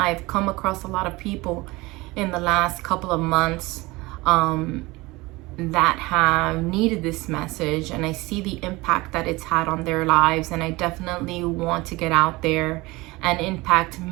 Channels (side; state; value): left; quieter; 21.9 dB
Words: come across a lot of people in the last couple of months that have needed this message, and I see the impact that it's had on their lives, and I definitely want to get out there and impact